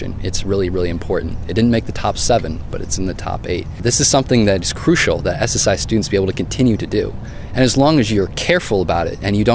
It's really, really important. It didn't make the top 7, but it's in the top 8. This is something that is crucial that SSI students be able to continue to do. And as long as you're careful about it and you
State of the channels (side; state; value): both; identical; correlation 1.00